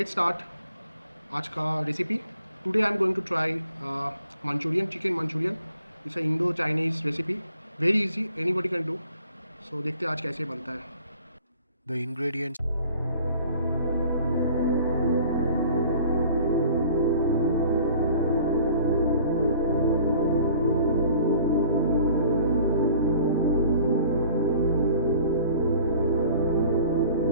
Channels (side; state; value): both; inverted; correlation -0.51